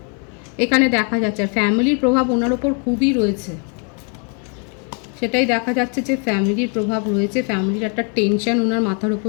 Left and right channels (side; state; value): right; quieter; 38.7 dB